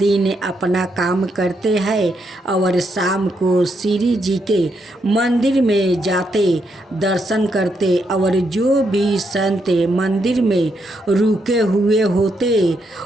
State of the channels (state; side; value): normal; both; correlation 0.79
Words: अपना काम करते हैं और शाम को श्री जी के मंदिर में जाते, दर्शन करते और जो भी संत मंदिर में रुके हुए होते